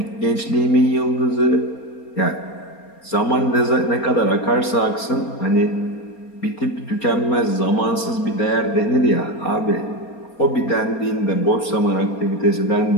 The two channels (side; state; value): right; late; 4.3 ms